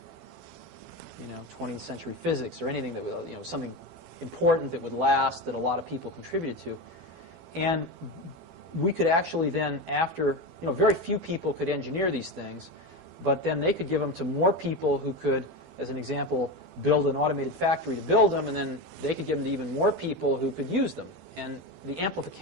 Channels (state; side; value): late; left; 12 ms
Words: 20th century physics or anything that, something important that would last, that a lot of people contributed to. And we could actually then, after, very few people could engineer these things, but then they could give them to more people who could, as an example, build an automated factory to build them, and then they could give them to even more people who could use them. And the